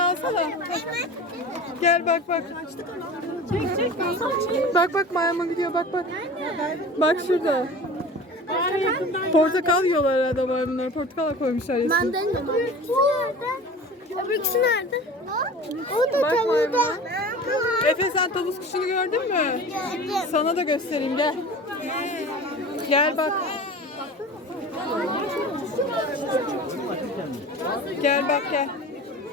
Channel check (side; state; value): both; normal; correlation 0.37